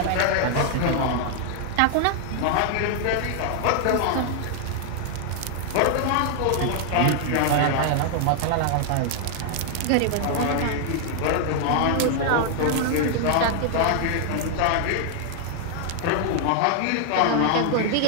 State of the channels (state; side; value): different; both; correlation 0.00